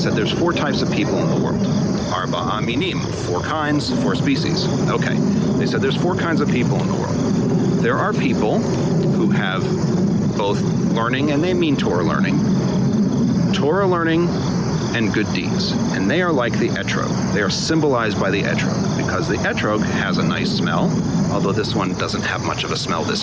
there's 4 types of people in the world. Arba, minim, 4 kinds, 4 species. Okay. They said there's 4 kinds of people in the world. There are people who have both learning, and they mean Torah learning and good deeds. And they are like the etrog. They are symbolized by the etrog, because the etrog has a nice smell, although this one doesn't have much of a smell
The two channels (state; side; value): identical; both; correlation 1.00